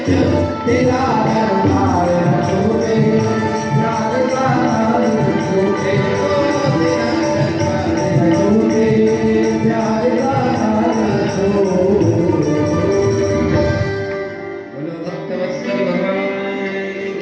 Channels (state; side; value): identical; both; correlation 1.00